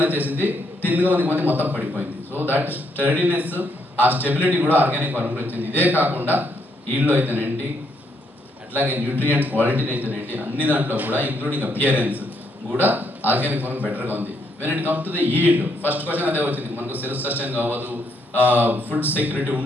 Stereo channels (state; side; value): normal; both; correlation 0.74